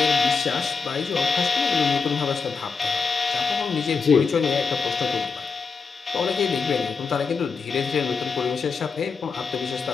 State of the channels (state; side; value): quieter; right; 5.1 dB